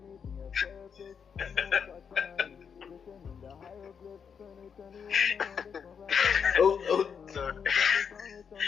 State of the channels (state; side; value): quieter; right; 6.8 dB